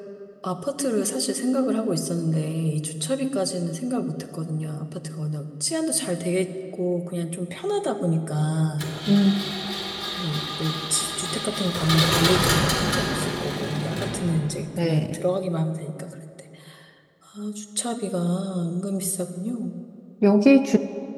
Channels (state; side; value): identical; both; correlation 1.00